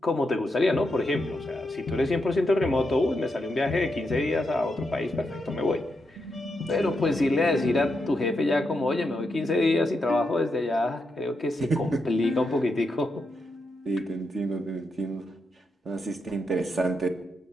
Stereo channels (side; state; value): both; normal; correlation 0.84